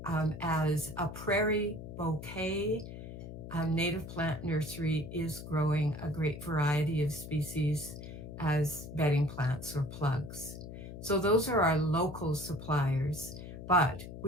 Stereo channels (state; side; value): noise; left; hum, 11 dB below the sound